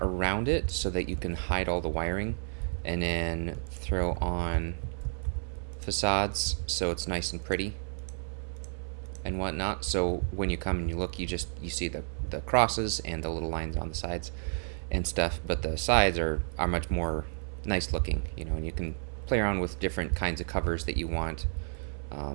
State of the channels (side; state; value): left; silent; 57 dB below the other